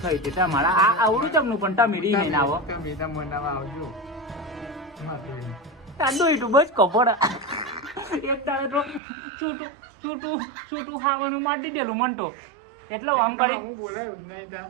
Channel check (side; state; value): left; drops out; at 9.0 s